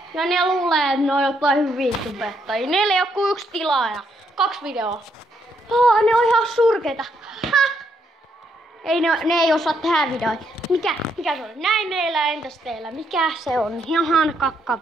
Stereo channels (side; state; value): both; normal; correlation 0.75